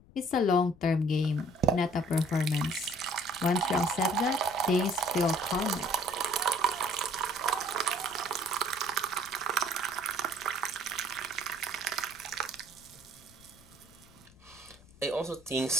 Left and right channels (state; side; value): noise; left; rumble, 25 dB below the sound